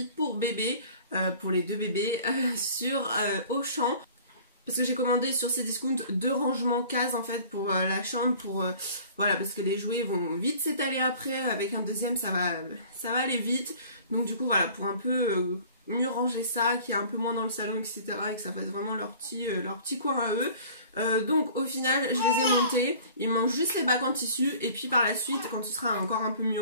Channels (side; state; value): both; inverted; correlation -0.47